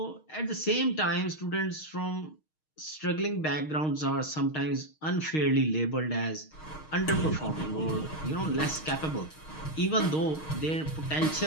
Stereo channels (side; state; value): right; late; 6.4 ms